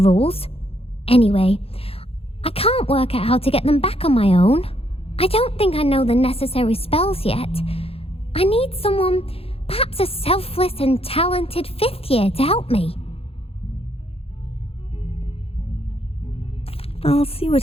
Anyway, I can't work out how to get them back on my own. I don't think I know the necessary spells yet. I need someone, perhaps a selfless and talented fifth year to help me. I'll see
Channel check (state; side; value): late; right; 0.28 ms